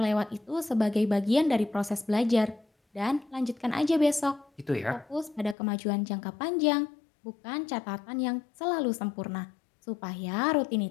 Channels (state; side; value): drops out; right; at 5.6 s